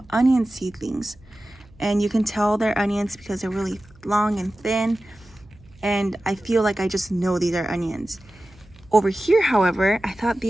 onion seedlings. And you can tell they're onions because they're really long and thin. And I feel like I just know these are onions. Over here, however, I thought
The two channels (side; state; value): right; noise; hum, 26 dB below the sound